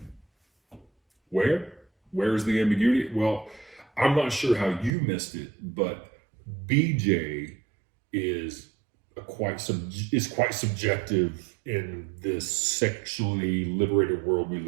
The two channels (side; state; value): left; drops out; at 4.9 s